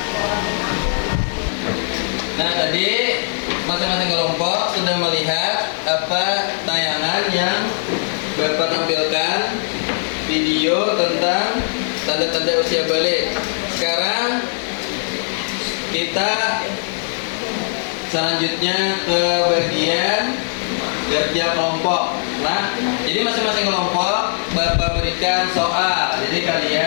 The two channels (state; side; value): silent; right; digital silence